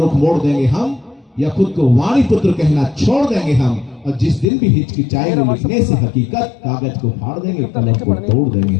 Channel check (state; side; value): drops out; right; at 4.5 s